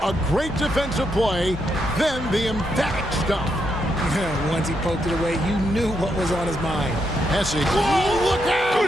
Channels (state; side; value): normal; both; correlation 0.80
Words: A great defensive play, then the emphatic stuff. Once he poked it away, you knew what was on his mind. Hesse. Whoa, look